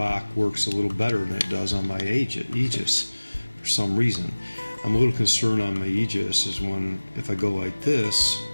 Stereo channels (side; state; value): both; inverted; correlation -1.00